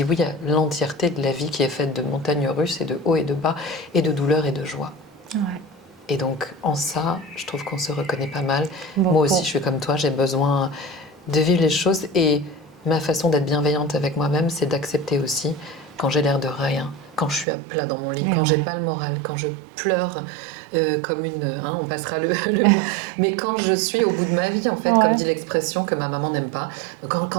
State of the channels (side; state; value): left; drops out; at 17.4 s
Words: oui à l'entièreté de la vie qui est faite de montagnes russes et de hauts et de bas et de douleur et de joie. Ouais. Et donc en ça, je trouve qu'on se reconnaît pas mal. Beaucoup. Moi aussi, je suis comme toi, j'ai besoin de vivre les choses et ma façon d'être bienveillante avec moi-même, c'est d'accepter aussi quand j'ai l'air de rien, quand je suis à plat dans mon lit, quand j'ai pas le moral, quand je pleure comme une... on passera le mot. Mais quand je suis au bout de ma vie, en fait, comme dit l'expression que ma maman n'aime pas,